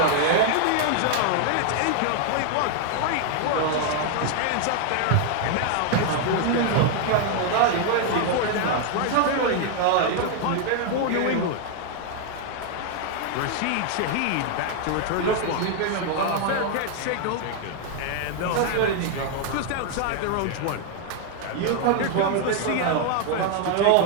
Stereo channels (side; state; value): both; different; correlation 0.00